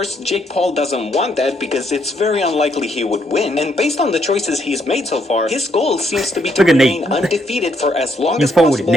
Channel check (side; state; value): both; normal; correlation 0.73